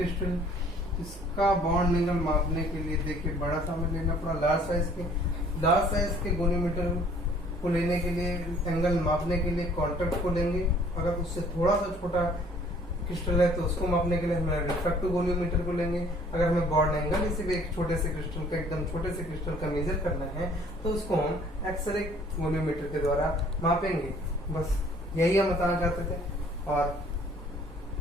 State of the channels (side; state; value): both; normal; correlation 0.56